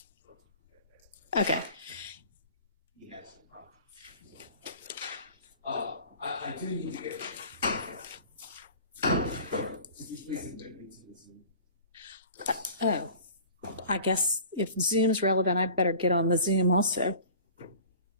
Okay. he has some problems. I do need to get. Could you please admit me to the Zoom? Oh, I guess if Zoom's relevant, I better get on the Zoom also.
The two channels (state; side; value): inverted; both; correlation -0.43